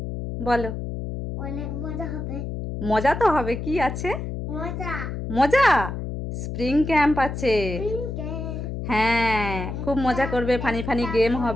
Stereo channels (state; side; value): noise; left; hum, 5 dB below the sound